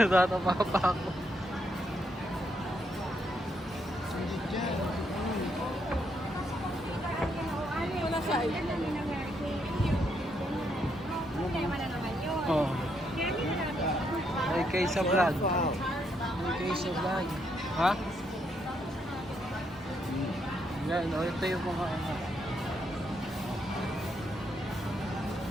pa ako. Wala sa ay. Oh. May kayo sa vlog. May kayo sa vlog. Ha? Yan, ito yung mga ano.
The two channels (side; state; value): both; normal; correlation 0.76